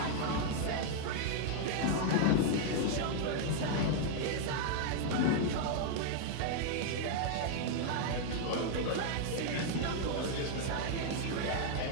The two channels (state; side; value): different; both; correlation 0.00